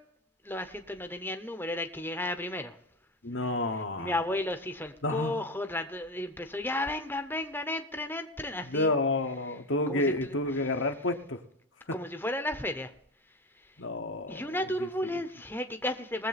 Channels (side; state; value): both; normal; correlation 0.24